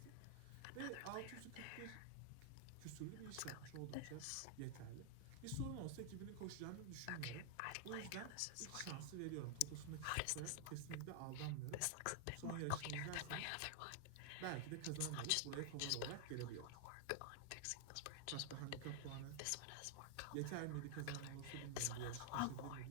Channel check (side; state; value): both; different; correlation 0.00